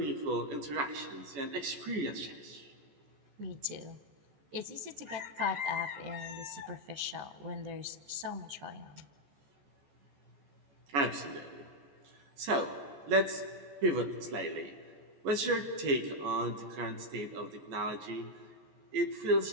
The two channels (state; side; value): late; left; 14 ms